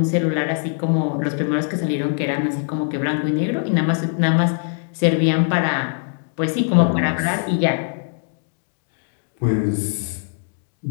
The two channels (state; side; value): silent; right; digital silence